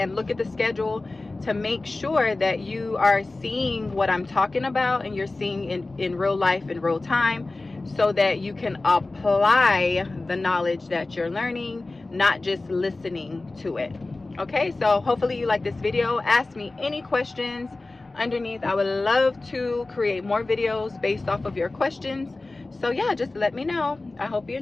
look at the schedule to make sure that you are seeing what I'm talking about, and you're seeing in real life, in real time, so that you can apply the knowledge that you're learning, not just listening to it. Okay, so hopefully you like this video. Ask me any questions underneath. I would love to create more videos based off of your questions. So yeah, just let me know. I hope you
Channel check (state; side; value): quieter; right; 3.2 dB